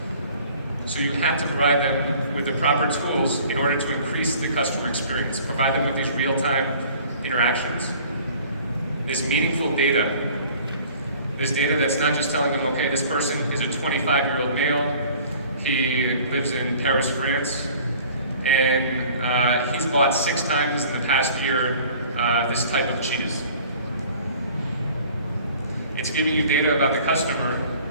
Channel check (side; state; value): both; inverted; correlation -0.49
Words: So you have to provide them with the proper tools in order to increase the customer experience. Provide them with these real-time interactions. This meaningful data. This data that's not just telling them, okay, this person is a 25-year-old male, he lives in Paris, France, and he's bought 6 times in the past year this type of cheese. It's giving you data about the customer